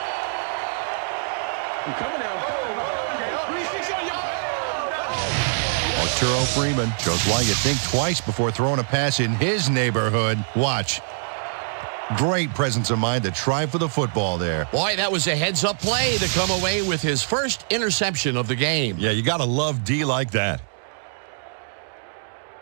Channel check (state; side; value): silent; left; digital silence